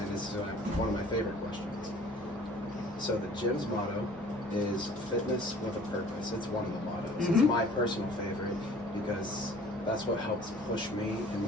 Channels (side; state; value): both; normal; correlation 0.51